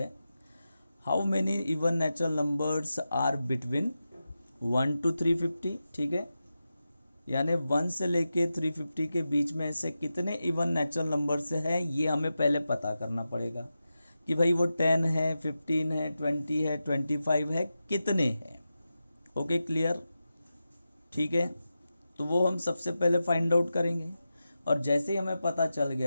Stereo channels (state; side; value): inverted; both; correlation -0.92